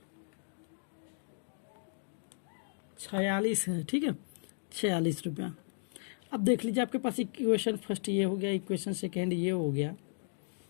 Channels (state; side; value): silent; right; digital silence